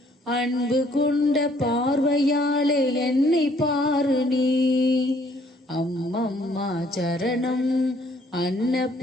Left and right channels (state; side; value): normal; both; correlation 0.63